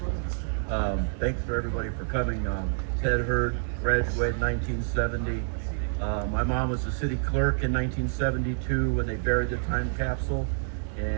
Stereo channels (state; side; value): silent; left; 59 dB below the other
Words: Thanks for everybody for coming. Ted Hurd, graduated 1970. My mom was the city clerk in 1972 when they buried the time capsule,